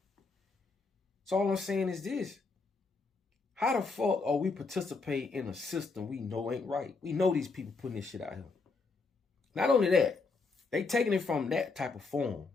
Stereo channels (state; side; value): quieter; right; 4.2 dB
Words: So all I'm saying is this. How the fuck are we participate in a system we know ain't right? We know these people putting this shit out here. Not only that, they taking it from that type of form.